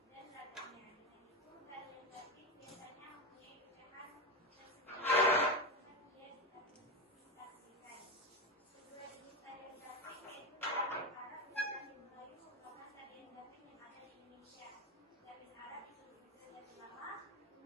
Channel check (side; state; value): both; normal; correlation 0.15